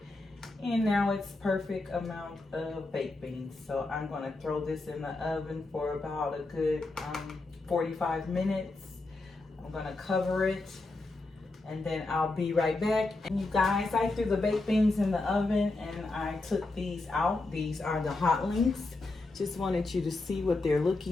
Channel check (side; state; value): right; quieter; 3.1 dB